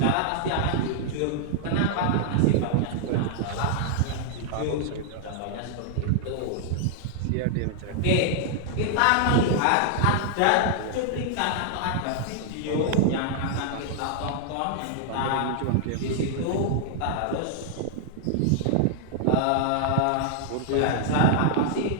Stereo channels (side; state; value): both; different; correlation -0.01